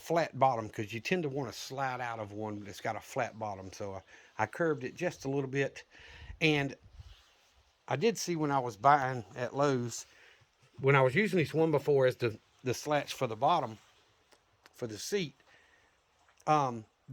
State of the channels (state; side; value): identical; both; correlation 1.00